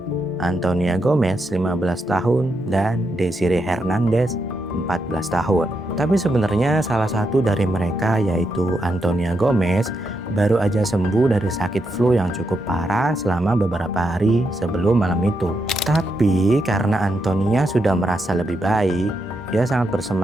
Antonia Gomez 15 tahun, dan Desiree Hernandez 14 tahun. Tapi sebenarnya salah satu dari mereka yaitu Antonia Gomez baru aja sembuh dari sakit flu yang cukup parah selama beberapa hari sebelum malam itu. Tapi karena Antonia sudah merasa lebih baik, dia sangat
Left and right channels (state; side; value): normal; both; correlation 0.83